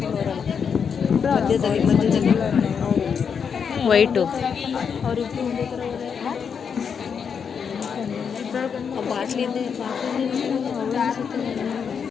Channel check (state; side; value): quieter; right; 6.7 dB